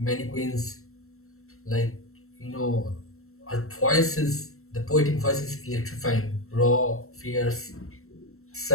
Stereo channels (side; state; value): right; late; 0.63 ms